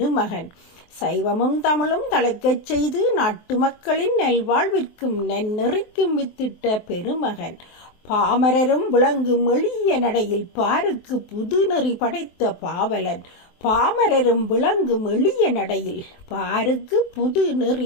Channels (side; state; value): right; late; 23 ms